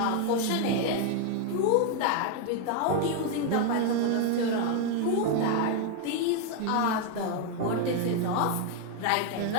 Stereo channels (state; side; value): different; both; correlation 0.01